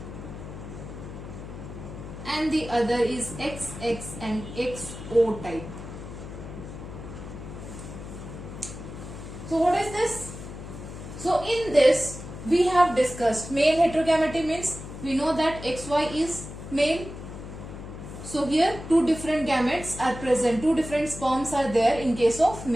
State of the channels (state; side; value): noise; left; hum, 11 dB below the sound